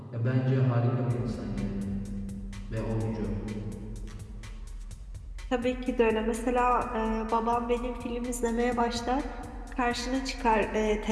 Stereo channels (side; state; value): both; identical; correlation 1.00